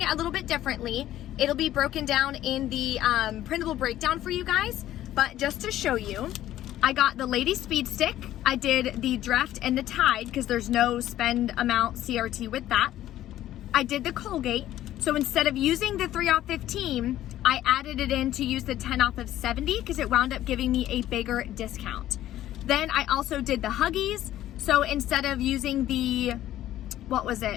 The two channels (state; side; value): quieter; right; 13.3 dB